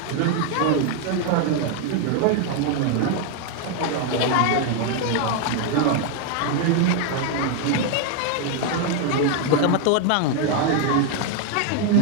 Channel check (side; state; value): both; different; correlation 0.00